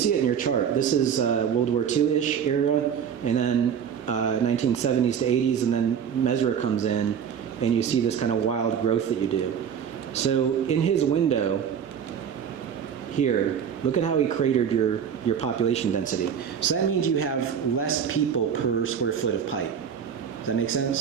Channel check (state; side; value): quieter; left; 7.9 dB